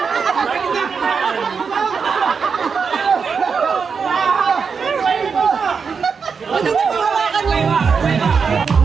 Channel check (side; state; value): left; quieter; 5.7 dB